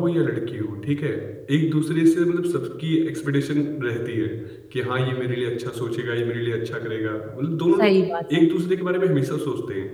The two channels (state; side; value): identical; both; correlation 1.00